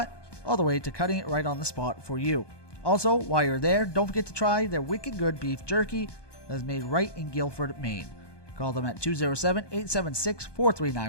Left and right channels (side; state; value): right; late; 1.2 ms